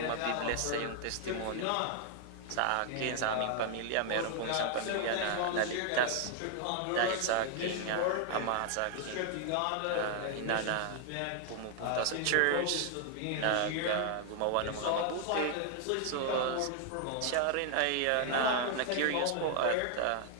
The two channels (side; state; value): both; different; correlation 0.00